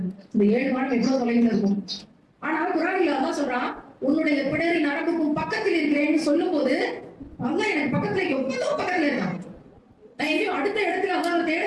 இந்த 7 வானம் எவ்வளவு தொலைவில் இருக்கும். ஆனா குர்ஆனில் அல்லாஹ் சொல்றான், உன்னுடைய பிடரி நரம்புக்கும் பக்கத்தில் இருக்கிறேன்னு சொல்லும் போது அல்லாஹ் எனக்கு பக்கத்துல எவ்வளவு பக்கத்துல இருக்கான். நான் எங்கேயும் அடுத்த இடத்துல அல்லாஹ் தேட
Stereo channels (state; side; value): identical; both; correlation 1.00